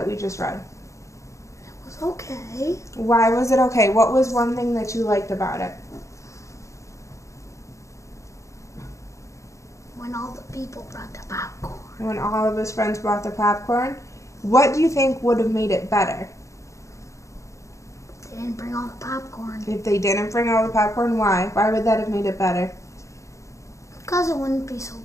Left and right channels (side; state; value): right; late; 0.15 ms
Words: we just read? It was okay. Why was it okay? What was one thing that you liked about it? When all the people brought the popcorn. When all of his friends brought the popcorn? What do you think would have made it better? They didn't bring all the popcorn. If they didn't bring all the popcorn, why? Why would that have made it better? Because it wouldn't be so